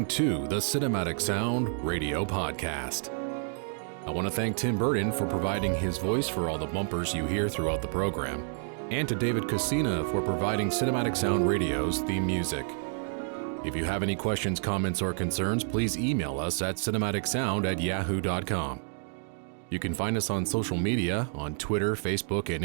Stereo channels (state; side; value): silent; left; 58 dB below the other